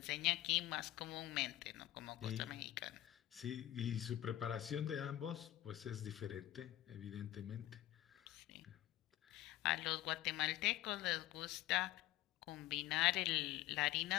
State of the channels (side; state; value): right; quieter; 14.7 dB